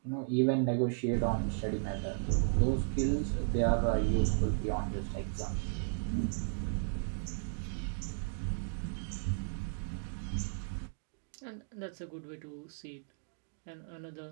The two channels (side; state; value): left; silent; digital silence